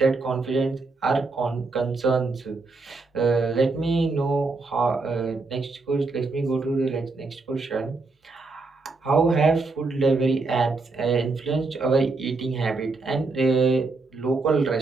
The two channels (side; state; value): left; quieter; 3.7 dB